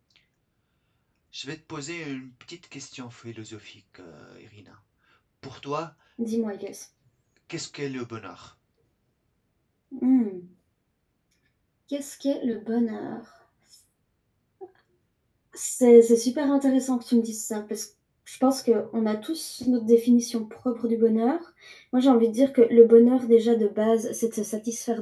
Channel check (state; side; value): identical; both; correlation 1.00